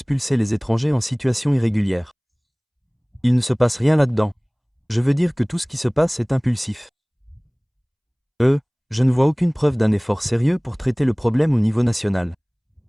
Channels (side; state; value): both; identical; correlation 1.00